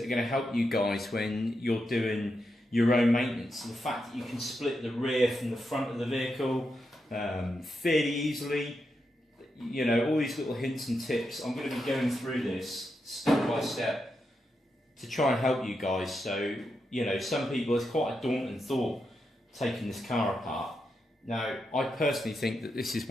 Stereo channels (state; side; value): normal; both; correlation 0.85